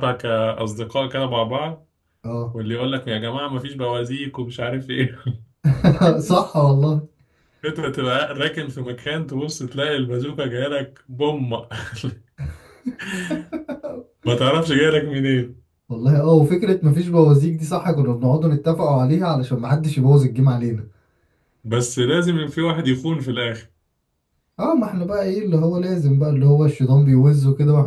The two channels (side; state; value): both; identical; correlation 1.00